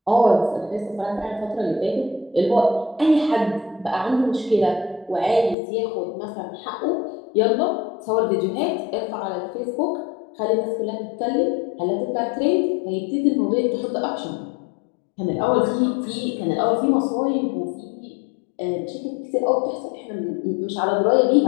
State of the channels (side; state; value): right; drops out; at 5.6 s